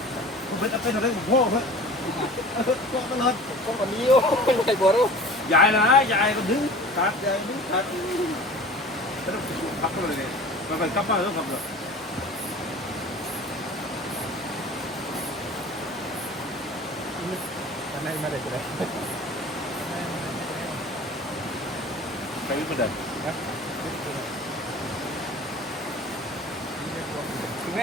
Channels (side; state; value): both; normal; correlation 0.41